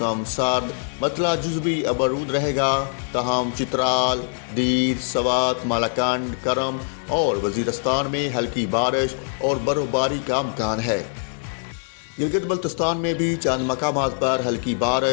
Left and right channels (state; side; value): silent; right; digital silence